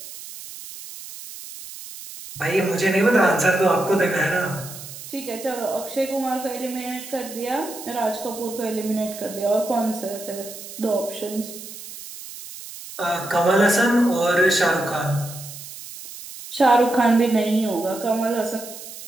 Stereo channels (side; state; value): right; noise; hiss, 13 dB below the sound